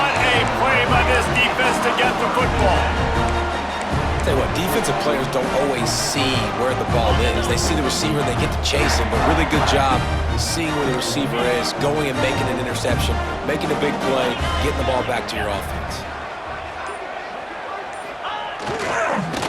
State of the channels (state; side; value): identical; both; correlation 1.00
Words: a play by this defense to get the football. Tell you what, defensive players don't always see where the ball is. They see the receiver, they get to chase him, but really good job seeing where the receiver is, going and making an interception, making a big play, getting the ball back to your offense.